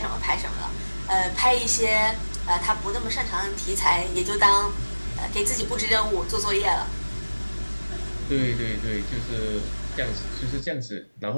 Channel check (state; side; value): inverted; both; correlation -1.00